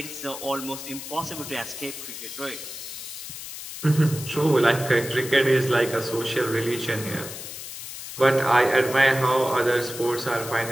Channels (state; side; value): noise; left; hiss, 10 dB below the sound